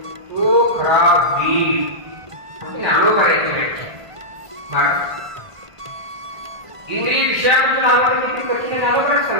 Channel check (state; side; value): late; left; 1.5 ms